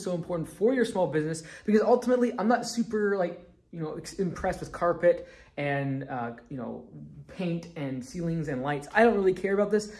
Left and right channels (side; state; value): both; identical; correlation 1.00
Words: so important for your small business, because ultimately, I'm not super impressed with carpet and paint and ceilings and lights. I don't really care about this,